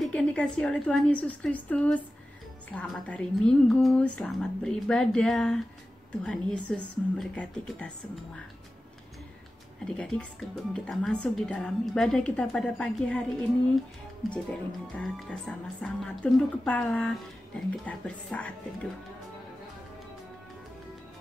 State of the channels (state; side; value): normal; both; correlation 0.94